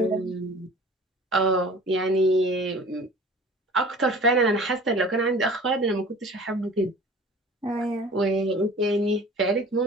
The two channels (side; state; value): both; normal; correlation 0.44